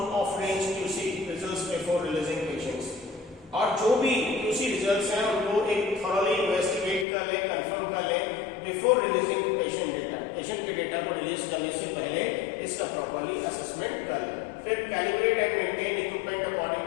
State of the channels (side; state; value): right; drops out; at 7.1 s